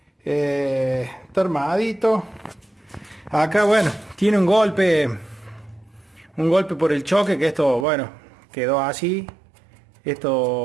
Está armadito. Acá bueno, tiene un golpe por el choque, que esto, bueno, quedó así.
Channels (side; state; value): left; drops out; at 7.9 s